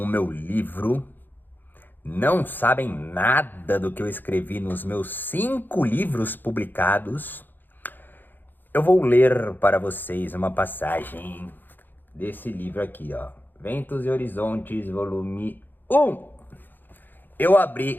meu livro, não sabem nada do que eu escrevi nos meus 5 livros publicados, eu vou ler para vocês uma passagem desse livro aqui, ó. Ventos e Horizontes, volume 1. Eu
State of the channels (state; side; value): late; right; 0.090 ms